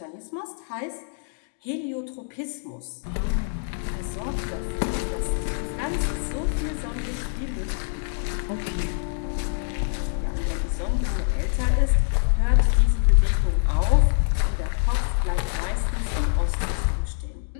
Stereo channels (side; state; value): right; silent; digital silence